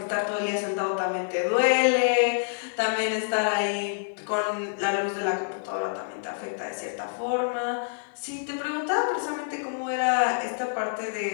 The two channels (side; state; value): right; silent; 60 dB below the other